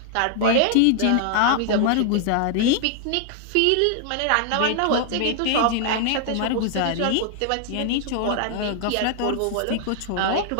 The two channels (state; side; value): different; both; correlation 0.00